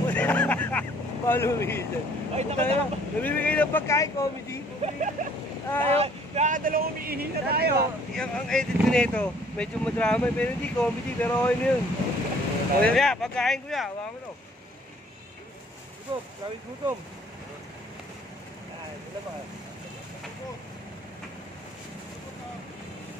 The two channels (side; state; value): both; normal; correlation 0.58